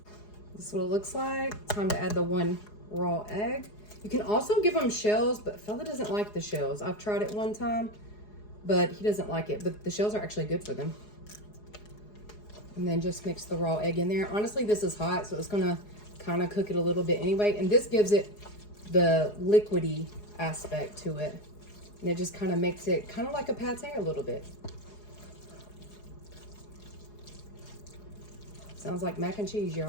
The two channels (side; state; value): right; late; 4.8 ms